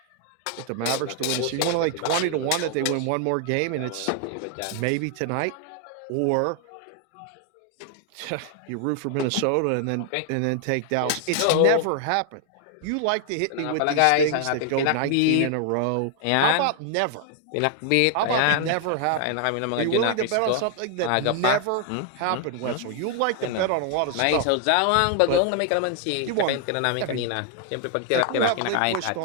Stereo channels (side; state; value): both; different; correlation 0.00